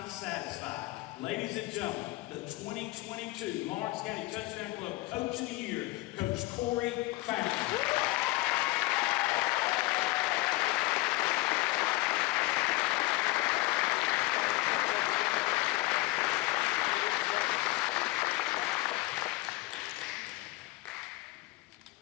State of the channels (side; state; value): right; quieter; 20.1 dB